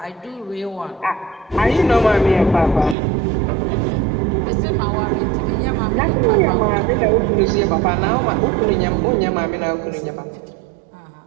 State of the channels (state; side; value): drops out; left; at 3.0 s